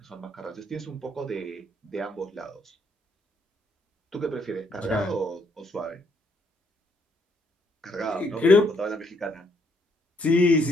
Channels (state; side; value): normal; both; correlation 0.71